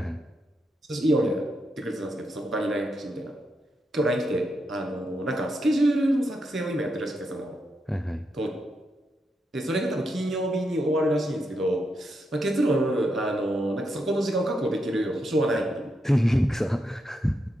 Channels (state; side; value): normal; both; correlation 0.83